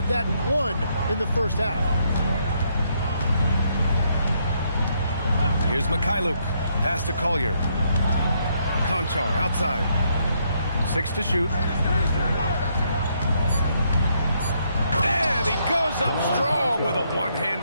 that one in the first half. Here's Mikhailuk. Pass to Collier. Konchar outside. 6 to shoot. And he goes up strong with a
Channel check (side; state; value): both; inverted; correlation -0.73